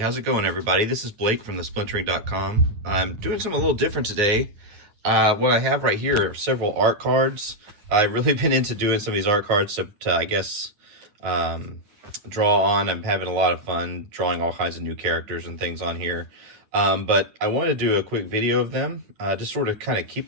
it going, everybody? This is Blake from the Splintering.com. I'm doing something a little different today. What I have right here are several art cards. I've really been into doing some of these art cards to I guess, draw on. I'm having a lot of fun drawing all kinds of new characters and things on here. But I want to do a quick video of them, just sort of kind of keep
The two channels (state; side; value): late; left; 9.4 ms